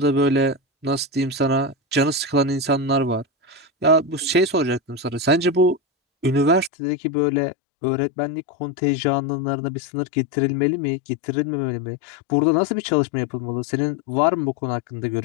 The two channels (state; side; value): drops out; right; at 6.7 s